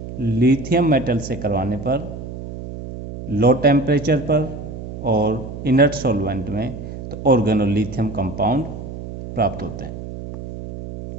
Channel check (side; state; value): right; noise; hum, 10 dB below the sound